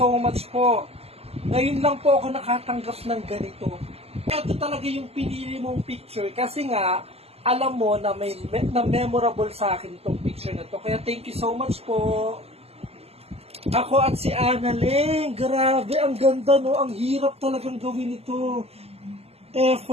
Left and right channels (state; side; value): late; left; 0.29 ms